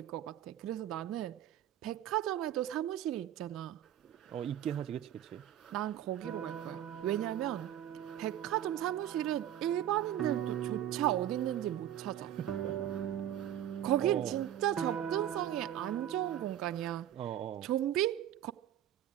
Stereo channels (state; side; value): quieter; left; 11.4 dB